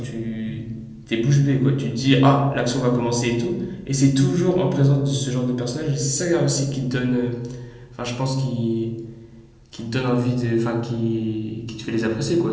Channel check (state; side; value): identical; both; correlation 1.00